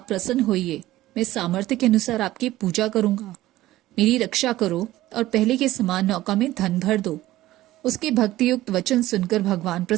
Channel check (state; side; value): quieter; left; 15.8 dB